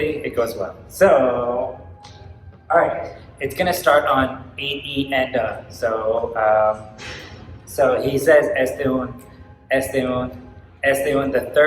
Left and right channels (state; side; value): identical; both; correlation 1.00